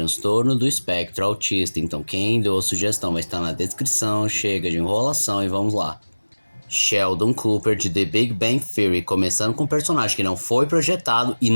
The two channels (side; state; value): both; inverted; correlation -1.00